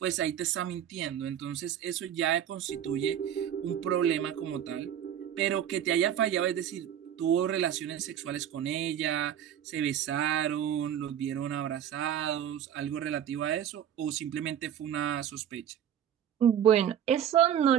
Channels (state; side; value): quieter; left; 9.9 dB